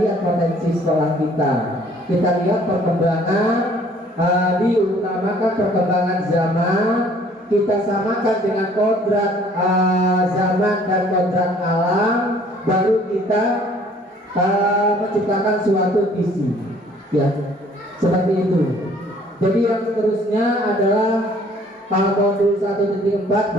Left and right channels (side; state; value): both; normal; correlation 0.57